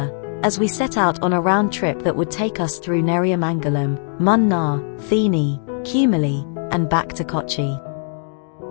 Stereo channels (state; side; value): silent; right; 66 dB below the other